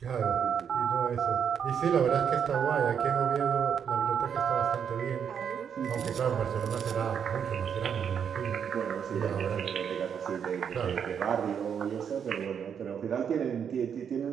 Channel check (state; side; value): quieter; left; 7.7 dB